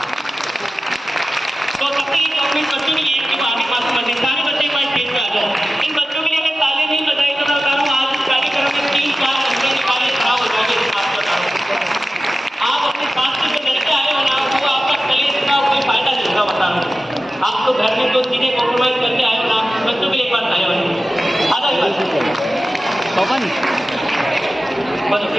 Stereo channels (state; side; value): normal; both; correlation 0.95